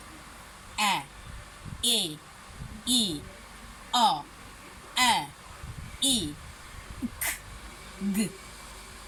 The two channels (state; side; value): identical; both; correlation 1.00